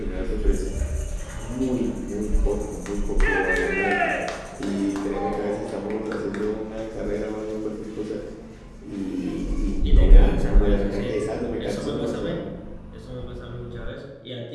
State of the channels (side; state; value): both; identical; correlation 1.00